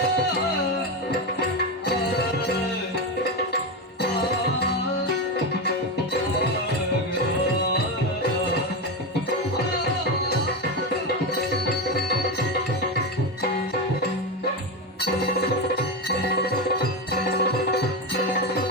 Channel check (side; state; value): both; normal; correlation 0.14